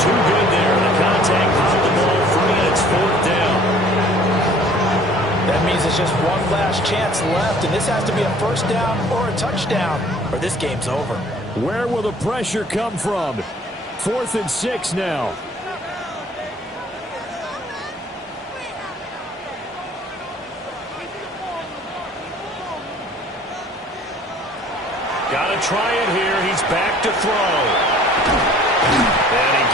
good there. The contact popped the ball free, and it's 4th down. That means there's just one last chance left, and this has to be a 1st down or a touchdown, or this game's over. Where will the pressure come from? 4th and 6 now. Got to try it here. He's back to throw. And he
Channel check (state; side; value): normal; both; correlation 0.53